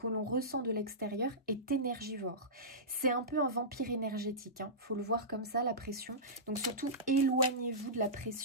l'on ressent de l'extérieur est énergivore. C'est un peu un vampire énergétique, hein. Faut le voir comme ça, la pression. Donc surtout, éloignez-vous de la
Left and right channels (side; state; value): both; normal; correlation -0.18